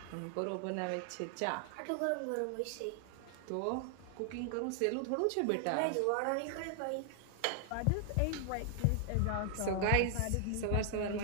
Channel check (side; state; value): both; different; correlation 0.00